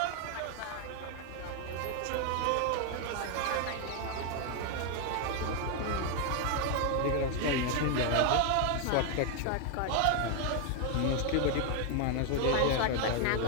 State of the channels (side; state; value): both; different; correlation 0.01